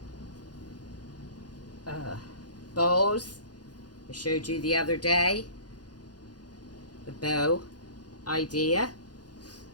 Bows. I showed you the other day the bow idea.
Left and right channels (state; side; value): late; right; 0.69 ms